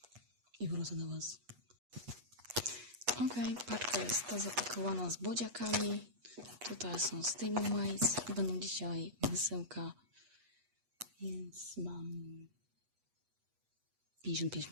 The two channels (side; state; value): left; late; 8.2 ms